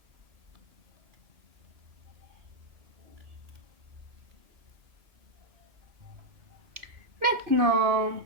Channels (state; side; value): late; left; 2.4 ms